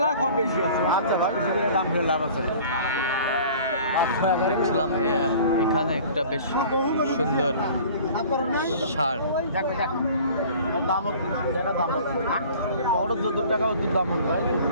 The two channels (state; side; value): inverted; both; correlation -0.46